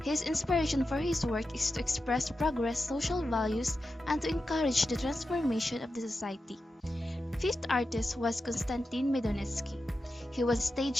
His inspiration for his work is to express progress, social values, and to encourage the transformation of the society. Fifth artist was Konstantin Medonetsky. He was a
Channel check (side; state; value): both; normal; correlation 0.91